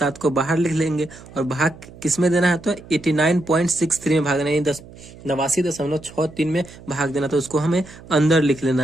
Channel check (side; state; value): right; noise; hum, 19 dB below the sound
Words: को बाहर लिख लेंगे और भाग किस में देना है, तो 89.63 में भाग देना है, 89.63 में भाग देना। तो उसको हमें अंदर लिख लेना